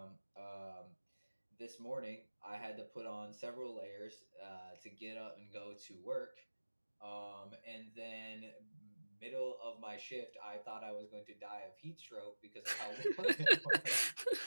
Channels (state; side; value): inverted; both; correlation -1.00